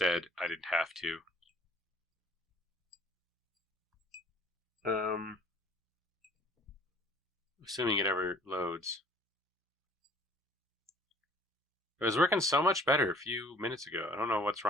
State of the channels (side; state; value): both; normal; correlation 0.55